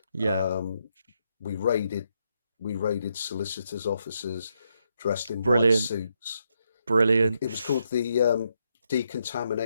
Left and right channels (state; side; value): inverted; both; correlation -0.80